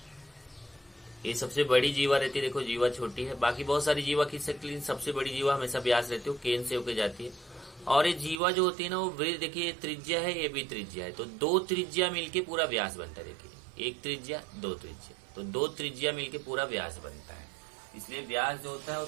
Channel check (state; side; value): drops out; left; at 8.4 s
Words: ये सबसे बड़ी जीवा रहती है, देखो जीवा छोटी है, बाकी बहुत सारी जीवा खींच सकती है, लेकिन सबसे बड़ी जीवा हमेशा व्यास रहती है, केंद्र से होकर जाती है। और ये जीवा जो होती है ना वो वृत्त, देखिए ये त्रिज्या है, ये भी त्रिज्या है, तो दो त्रिज्या मिलके पूरा व्यास बनता है। देखिए एक त्रिज्या दो त्रिज्या, तो दो त्रिज्या मिलके पूरा व्यास बनता है। इसलिए व्यास जो होता है वो